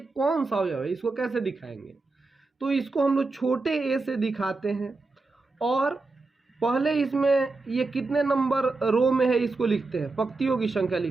कौन सा अवयव है, इसको कैसे दिखाएंगे। तो इसको हम लोग छोटे ए से दिखाते हैं, और पहले इसमें ये कितने नंबर रो में है इसको लिखते हैं, पंक्तियों की संख्या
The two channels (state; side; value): quieter; left; 3.6 dB